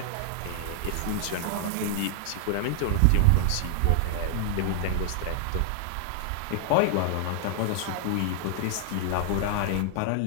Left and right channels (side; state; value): both; different; correlation 0.00